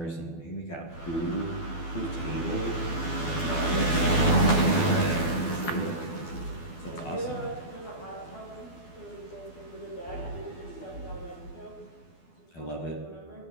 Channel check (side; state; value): right; late; 12 ms